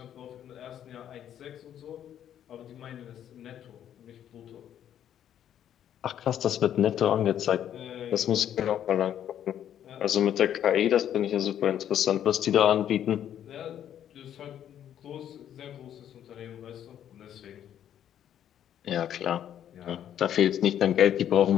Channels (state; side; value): quieter; right; 10.3 dB